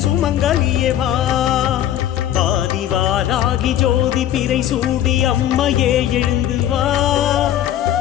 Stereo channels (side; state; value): right; quieter; 11.6 dB